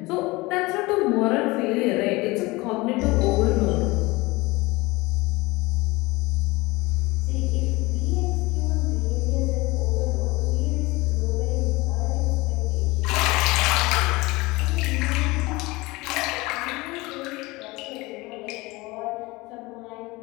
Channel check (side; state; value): right; quieter; 22.3 dB